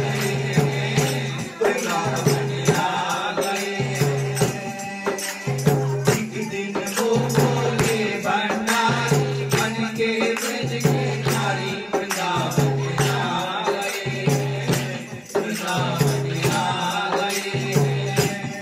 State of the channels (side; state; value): both; identical; correlation 1.00